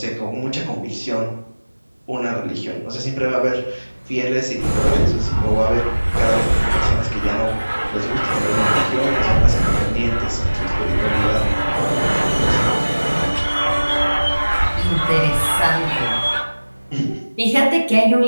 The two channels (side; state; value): both; inverted; correlation -1.00